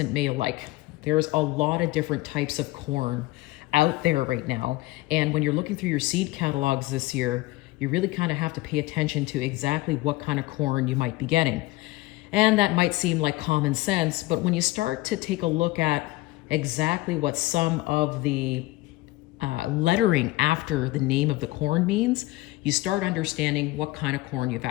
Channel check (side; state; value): right; quieter; 19.3 dB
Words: made alike. There's a lot of different types of corn out there right now. And when you're looking through your seed catalogs this year, you really kind of have to pay attention to exactly what kind of corn you might be getting. And that might seem like common sense, but when you start to take a look at exactly what some of the lettering after the name of the corn means, you start understanding what kind of corn you've